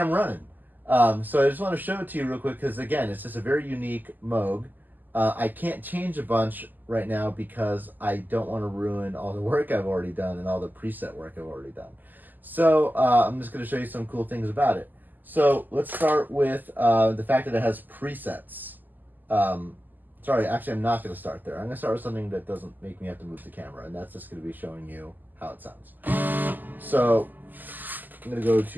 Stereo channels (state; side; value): late; left; 0.086 ms